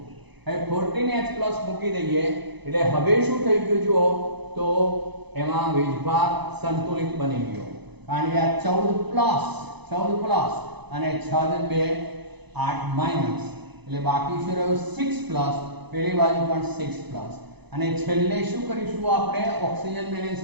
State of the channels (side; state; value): left; late; 0.99 ms